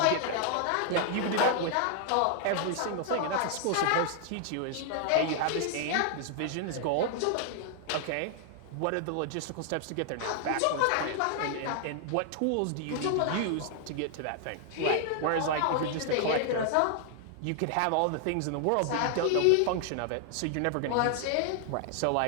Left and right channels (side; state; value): both; different; correlation 0.00